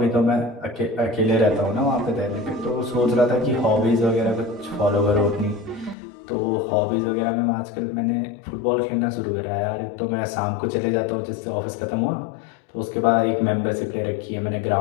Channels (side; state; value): right; drops out; at 6.0 s